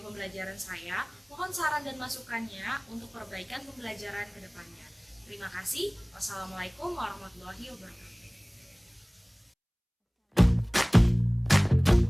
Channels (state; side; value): identical; both; correlation 1.00